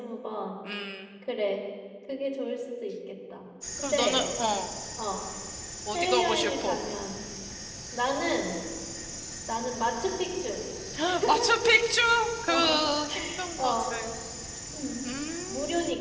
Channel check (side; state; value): both; identical; correlation 1.00